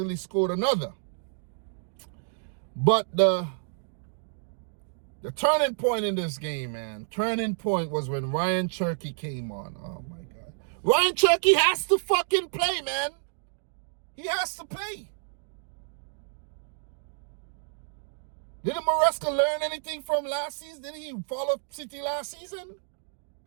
scored another. But the turning point in this game, man, was when Ryan Cherky came on. Oh, my God. Ryan Cherky has to fucking play, man. He has to play. Didn't Maresca learn anything from last season? Didn't he follow City last season?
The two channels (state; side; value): silent; left; digital silence